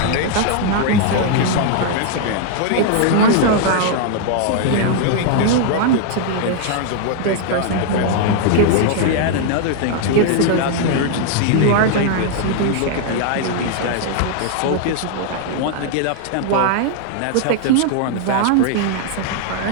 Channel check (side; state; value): both; different; correlation 0.00